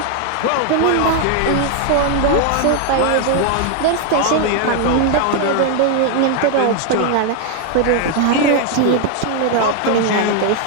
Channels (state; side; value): different; both; correlation 0.00